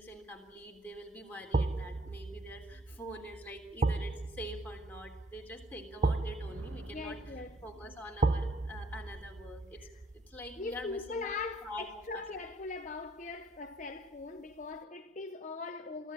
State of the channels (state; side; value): normal; both; correlation 0.64